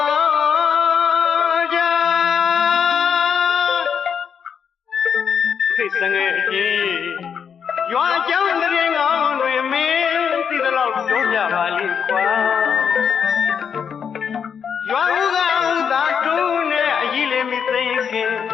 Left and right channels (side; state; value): right; quieter; 7.2 dB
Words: ်ကြာခိတ်တငယ်ကြီးရွာကျောင်းတရင်ကောင်းတွေမင်းသိသလောက်ပြောပြပါလိမ့်ကွာရွာဦးကသာတူးနဲ့အကြီးလေးမသိခင်